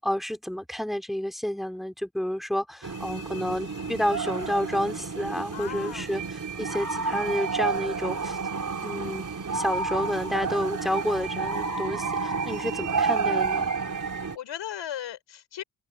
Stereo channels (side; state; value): both; normal; correlation 0.43